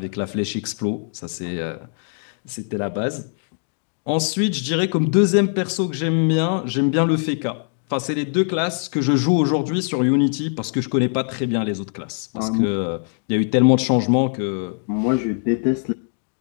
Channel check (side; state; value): right; silent; 64 dB below the other